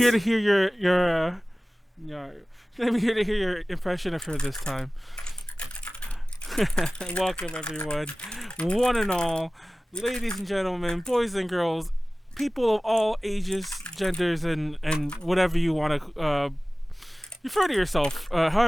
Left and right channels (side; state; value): both; normal; correlation 0.97